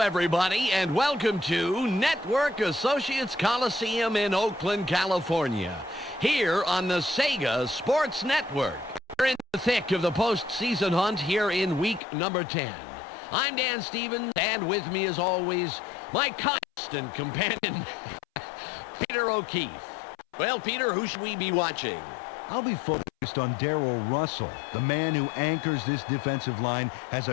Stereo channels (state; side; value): drops out; right; at 12.0 s